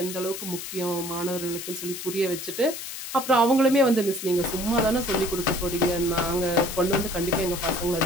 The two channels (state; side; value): noise; left; hiss, 8 dB below the sound